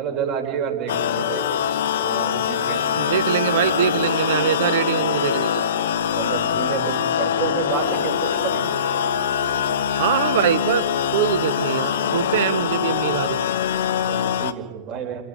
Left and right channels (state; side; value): inverted; both; correlation -0.41